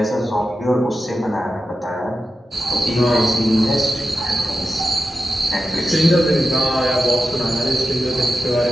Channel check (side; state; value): both; normal; correlation 0.91